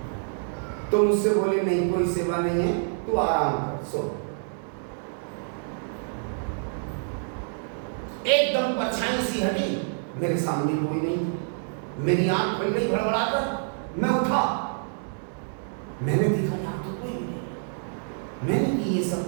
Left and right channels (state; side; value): silent; left; digital silence